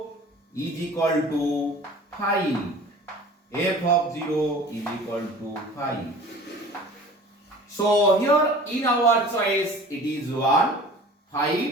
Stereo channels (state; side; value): normal; both; correlation 0.43